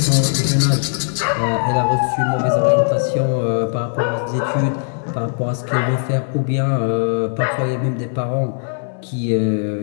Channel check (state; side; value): silent; right; digital silence